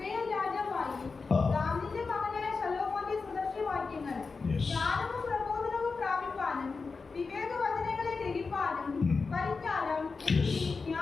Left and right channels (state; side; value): quieter; right; 4.5 dB